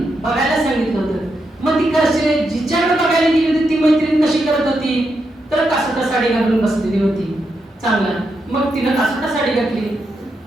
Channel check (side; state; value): both; normal; correlation 0.84